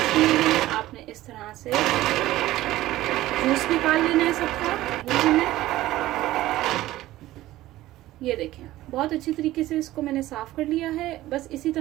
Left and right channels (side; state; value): left; quieter; 15.9 dB